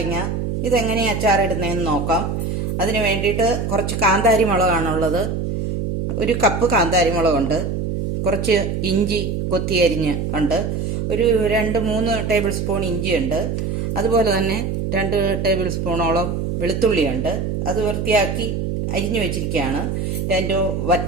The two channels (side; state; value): right; noise; hum, 2 dB below the sound